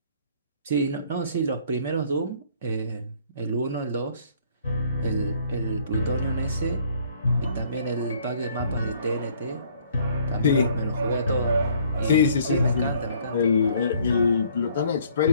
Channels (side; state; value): both; inverted; correlation -0.60